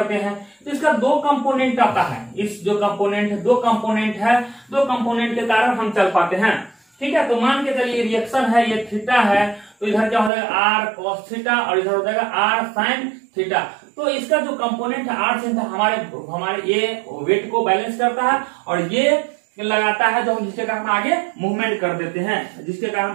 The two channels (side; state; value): left; drops out; at 10.3 s